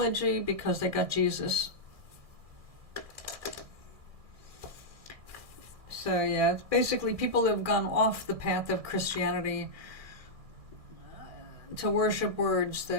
because they got Jesus. So yeah, it's basically people have gone off the path of Christianity to worship words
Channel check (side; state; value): left; late; 1.6 ms